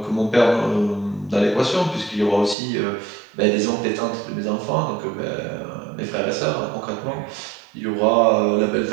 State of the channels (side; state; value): left; drops out; at 2.6 s